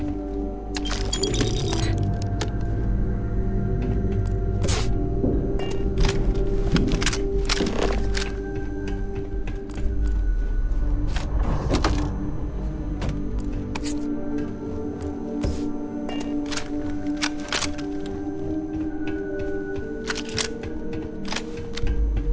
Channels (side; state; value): both; identical; correlation 1.00